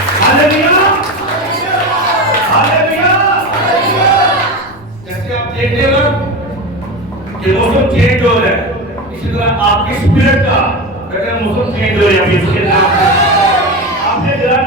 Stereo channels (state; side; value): noise; left; rumble, 25 dB below the sound